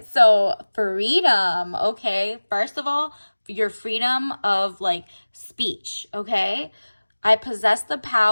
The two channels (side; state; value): both; inverted; correlation -1.00